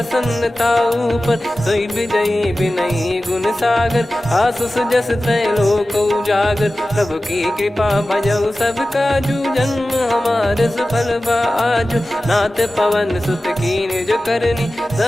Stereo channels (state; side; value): normal; both; correlation 0.95